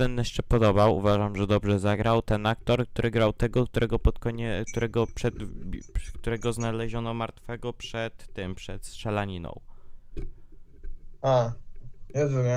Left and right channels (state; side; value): identical; both; correlation 1.00